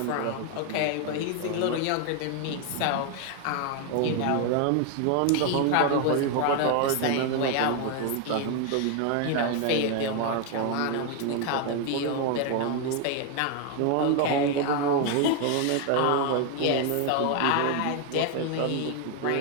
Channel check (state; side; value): different; both; correlation 0.01